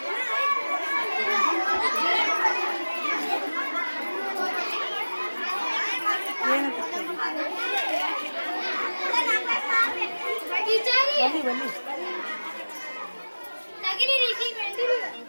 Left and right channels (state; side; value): inverted; both; correlation -1.00